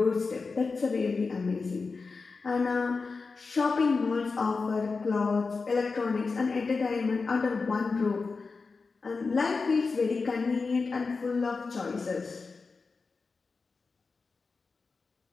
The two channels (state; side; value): quieter; right; 4.4 dB